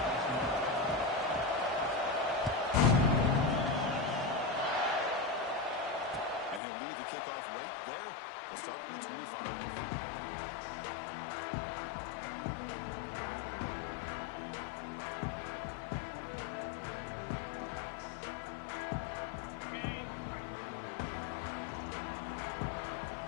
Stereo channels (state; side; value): drops out; right; at 6.6 s